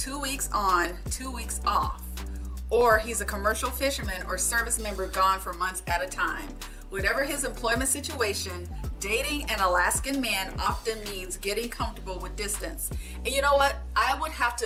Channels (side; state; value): both; identical; correlation 1.00